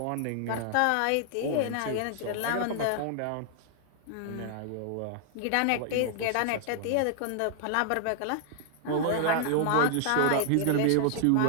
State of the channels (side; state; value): both; different; correlation 0.00